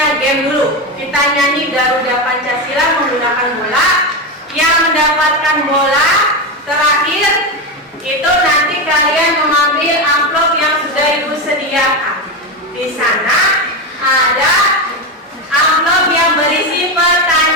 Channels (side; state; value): both; normal; correlation 0.14